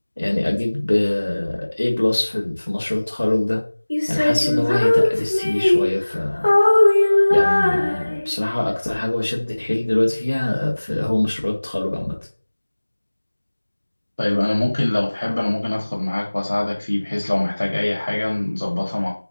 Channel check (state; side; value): inverted; both; correlation -1.00